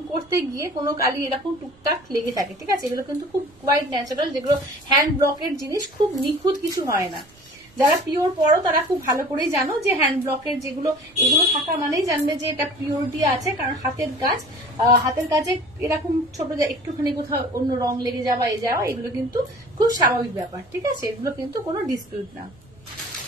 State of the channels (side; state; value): right; noise; rumble, 28 dB below the sound